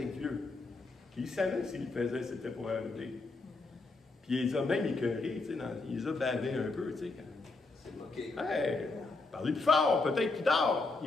Dieu. Puis il savait s'il le faisait, c'était pour arriver. Puis il les a même écœurés, tu sais, il les a bavés un peu, tu sais. C'est moqué. Hey, parlez plus fort, peut-être qu'il dort,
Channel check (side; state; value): right; quieter; 3.6 dB